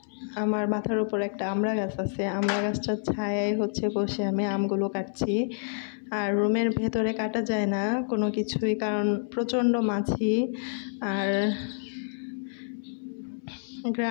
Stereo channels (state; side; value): silent; right; 59 dB below the other